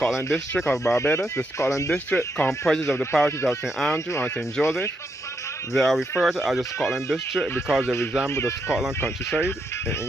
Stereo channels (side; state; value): both; normal; correlation 0.80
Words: district of Barbados. The Scotland district comprises of the parishes of St. Andrew and St. Joseph. They are referred to as the Scotland district because they resemble the Scotland countryside in